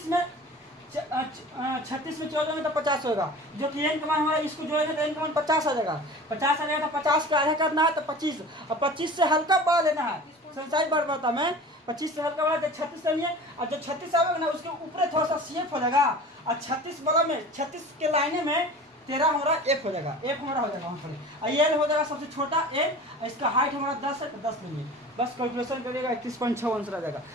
में 14 में तो 50 होगा, जो कि n का मान हमारा इसको जोड़ेंगे तो n का मान 50 आ जाएगा। 50 आ जाएगा तो 50 का आधा करना है तो 25, और 25 से हल्का बड़ा लेना है। संसारिक बारंबारता में 25 से हल्का बड़ा तो 36 लेंगे, और जो 36 आएगा ना उसके ऊपर थोड़ा सा CF हो जाएगा, और 36 वाला में 36 के लाइने में 13 हमारा F हो जाएगा, F हमारा हो जाएगा वहाँ पर, और L हो जाएगा सबसे छोटा L, इसका हाइट हमारा 10 है तो 10 लेंगे, बस कैलकुलेशन करिएगा 31.6 आंसर आ जाएगा।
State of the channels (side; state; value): both; normal; correlation 0.39